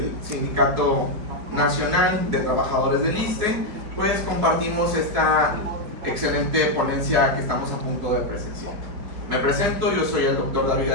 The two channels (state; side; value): late; left; 4.9 ms